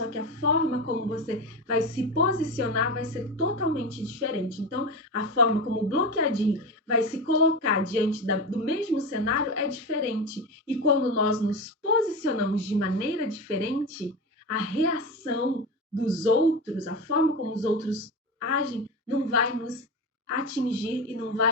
que a forma como você vai se posicionar vai ser totalmente diferente. Então, a forma como o Bloqueadinho vai se colocar diante do mesmo cenário é diferente. E quando nós nos posicionamos de maneira diferente, a reação dos outros, a forma como os outros agem, não vai nos atingir e não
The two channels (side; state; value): both; normal; correlation 0.21